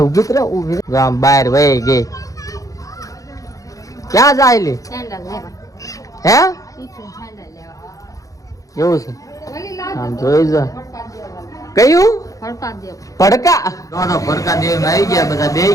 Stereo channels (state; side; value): late; right; 0.16 ms